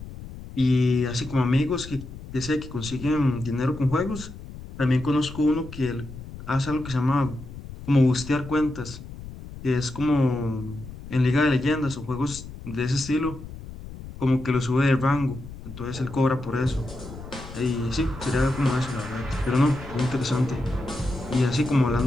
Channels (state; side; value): noise; left; rumble, 13 dB below the sound